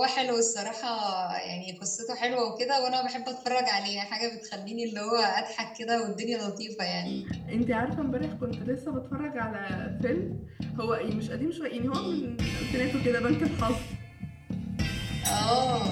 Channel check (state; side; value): identical; both; correlation 1.00